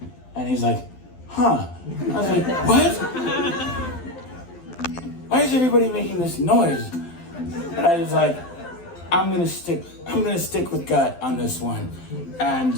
and he's like, huh? I was like, what? Why is everybody making this noise? And I was like, I'm gonna stick with gut on this one.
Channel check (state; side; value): late; right; 12 ms